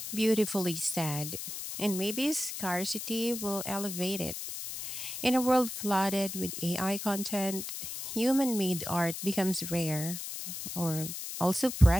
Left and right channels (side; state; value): left; noise; hiss, 7 dB below the sound